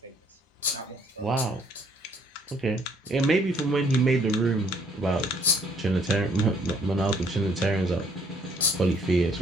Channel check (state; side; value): normal; both; correlation 0.64